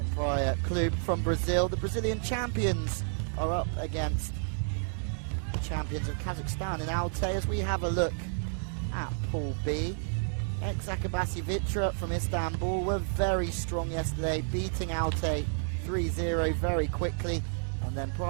Praia Clube from Brazil. The Brazilian champions are up against the champions of Kazakhstan in Altay as we have a look at Pool B. Ex-Akabasi Vitra from Istanbul were very strong yesterday, beating Altay 3-0 very quickly. And then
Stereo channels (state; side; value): silent; left; 57 dB below the other